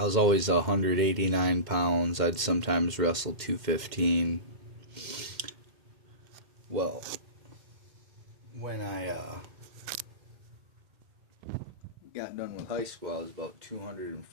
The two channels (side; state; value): left; late; 2.1 ms